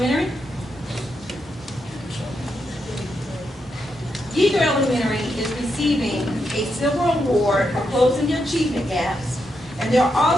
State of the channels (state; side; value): normal; both; correlation 0.83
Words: Yeager Elementary is receiving a silver award for closing the achievement gaps, and they're